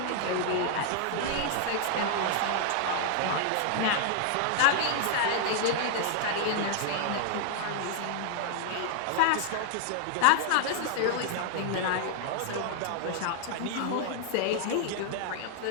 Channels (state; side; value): different; both; correlation 0.00